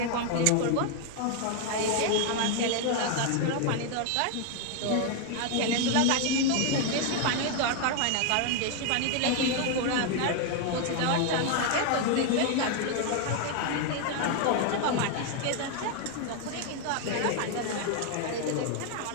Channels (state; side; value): different; both; correlation 0.01